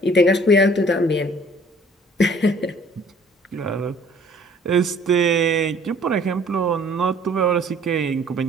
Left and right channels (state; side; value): normal; both; correlation 0.55